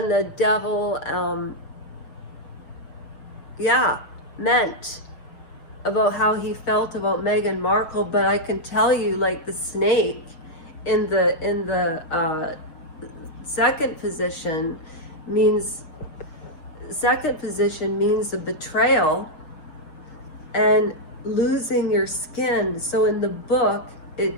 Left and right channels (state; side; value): late; right; 6.6 ms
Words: devil meant about how he felt about Meghan Markle. But I can tell you, like, the snake in the second position means the betrayal and losing your skin. So in the book